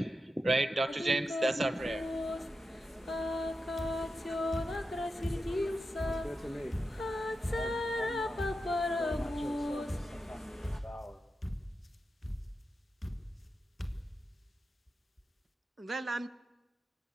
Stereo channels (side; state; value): both; normal; correlation 0.90